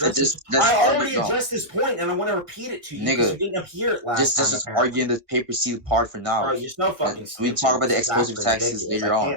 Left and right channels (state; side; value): late; left; 1.6 ms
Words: this. Just I argue, already addressed this point, and I want to repeat it to you because you nigga. didn't hear it last time. Just arguing the paper seal part for now. Bro, you're so fucking And we stupid. talk about the This is explosive actually tags ridiculous. later I on.